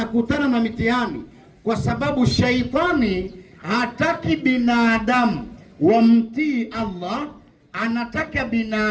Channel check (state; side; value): identical; both; correlation 1.00